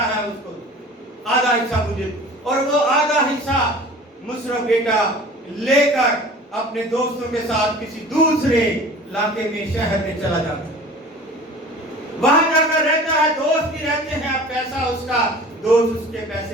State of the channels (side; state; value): both; normal; correlation 0.42